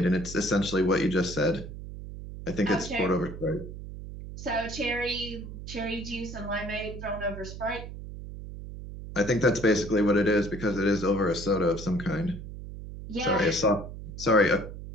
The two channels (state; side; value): noise; right; hum, 11 dB below the sound